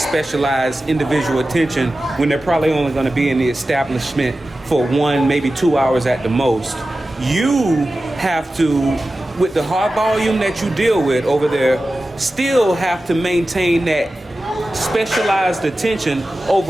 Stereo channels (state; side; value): normal; both; correlation 0.94